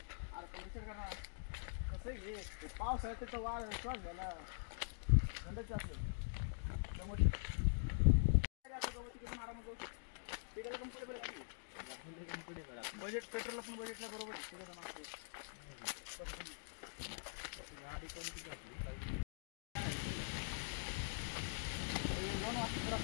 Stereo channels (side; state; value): right; silent; digital silence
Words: पाऊस आहे तर वाढ श्वास झाला थंडच असेल बजेट पेट्रोल पण बजेटला बरोबर